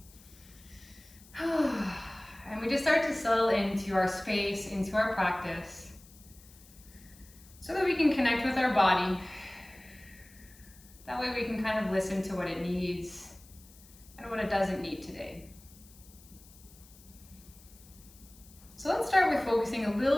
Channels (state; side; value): noise; left; hiss, 23 dB below the sound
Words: And we just start to settle into our space, into our practice, so that we can connect with our body. That way we can kind of listen to what it needs and what it doesn't need today. So let's start with focusing a